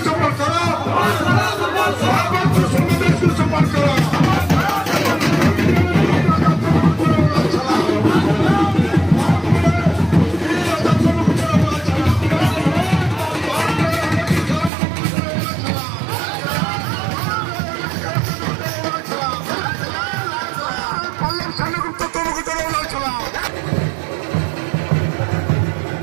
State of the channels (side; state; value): left; drops out; at 14.7 s